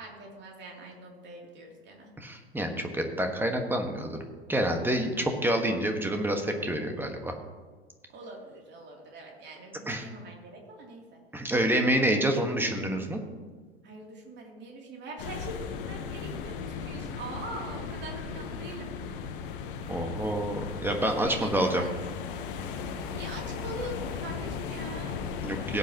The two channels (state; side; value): normal; both; correlation 0.47